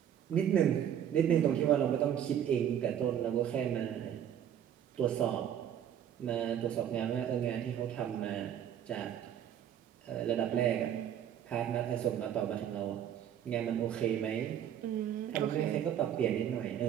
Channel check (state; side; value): quieter; left; 9.8 dB